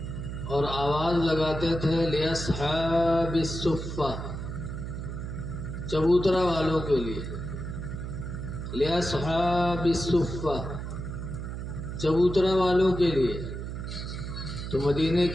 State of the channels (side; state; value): right; noise; hum, 6 dB below the sound